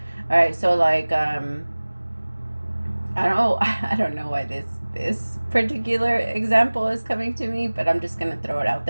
All right, so like I don't know why this particular example is coming to me, but I'm just gonna throw it out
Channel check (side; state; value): both; inverted; correlation -1.00